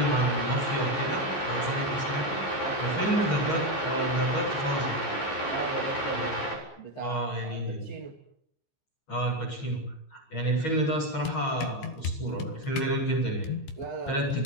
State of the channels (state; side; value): late; right; 15 ms